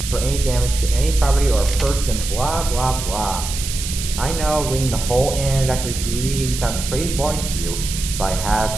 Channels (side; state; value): right; noise; hiss, 6 dB below the sound